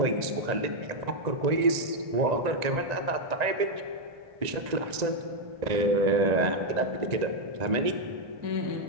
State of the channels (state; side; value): late; left; 1.9 ms